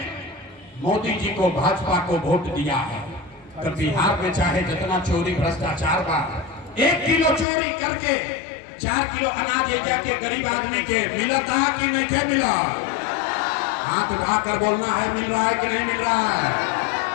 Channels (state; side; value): drops out; right; at 7.5 s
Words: मोदी जी को, भाजपा को वोट दिया है। तो बिहार में चाहे जितना चोरी भ्रष्टाचार बा, 1 किलो चोरी करके 4 किलो अनाज जाके गरीब आदमी के मिलता है कि नहीं मिला? हाथ उठाकर बोलना है मिल रहा है कि नहीं मिल रहा है?